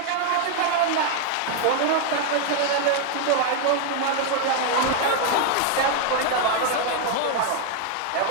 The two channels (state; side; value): different; both; correlation 0.01